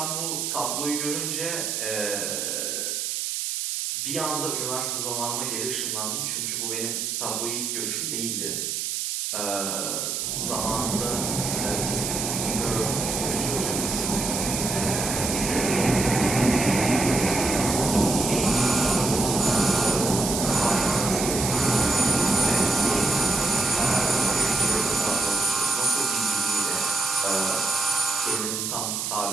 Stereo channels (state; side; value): noise; right; hiss, 2 dB below the sound